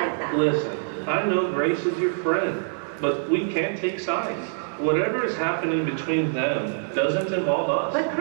that. Listen, I know Grace is your friend, but we can't take sides. Whatever is happening between them doesn't involve us. But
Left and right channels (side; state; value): left; silent; 61 dB below the other